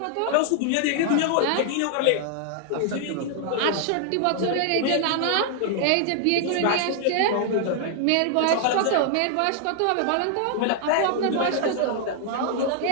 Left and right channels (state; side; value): different; both; correlation -0.01